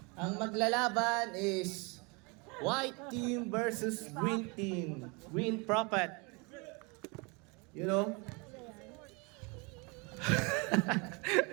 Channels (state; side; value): quieter; left; 30.1 dB